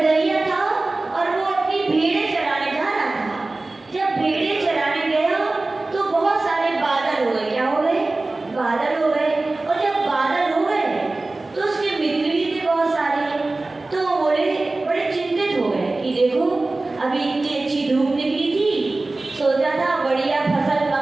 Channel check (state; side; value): quieter; left; 3.1 dB